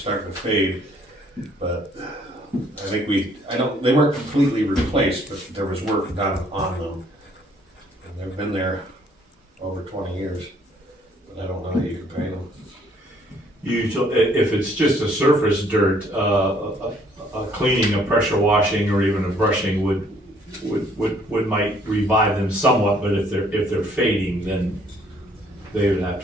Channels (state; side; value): normal; both; correlation 0.63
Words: to fade, but I think they weren't completely replaced, but there was work done on them. And they've been there over 20 years, but I don't know how you can paint them. Usually, if it's just a surface dirt, a cleaning, a pressure washing, or even a brushing would might revive them somewhat, but if they're fading, then they would have